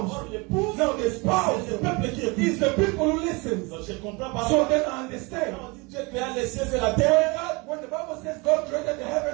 Or l'épouse. Now the spouse C'est le peuple qui écoute. is the people who listen. Donc, je comprends pas. So then I understand. Quand on dit Dieu créa les cieux et la terre, When the Bible says God created the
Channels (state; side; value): quieter; left; 27.2 dB